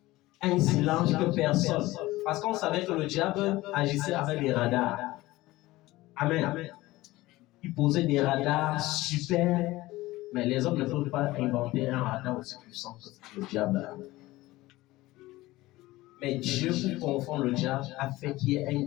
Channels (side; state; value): right; quieter; 18.5 dB